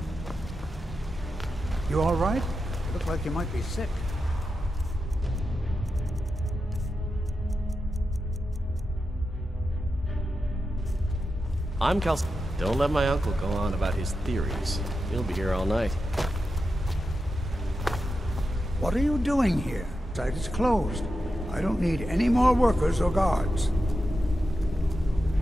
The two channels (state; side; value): normal; both; correlation 0.90